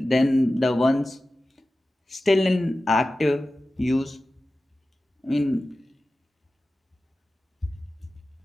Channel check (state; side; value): normal; both; correlation 0.95